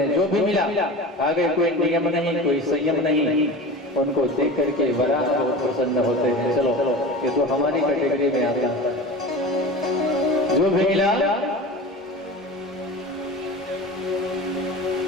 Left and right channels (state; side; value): normal; both; correlation 0.33